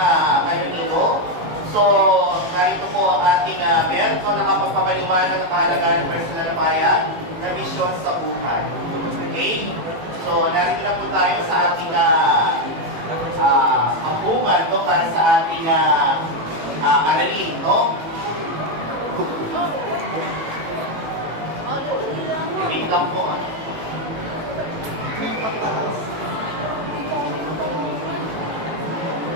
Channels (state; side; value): late; left; 18 ms